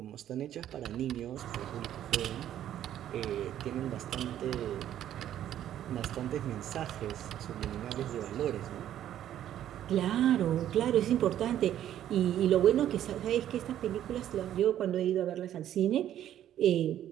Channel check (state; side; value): quieter; left; 11.4 dB